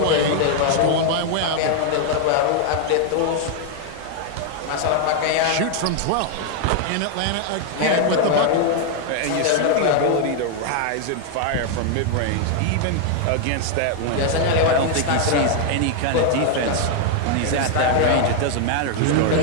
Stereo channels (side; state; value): both; different; correlation 0.00